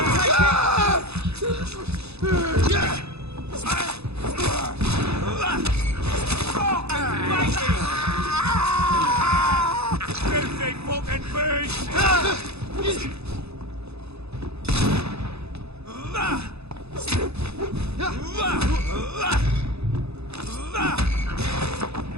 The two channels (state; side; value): late; left; 0.79 ms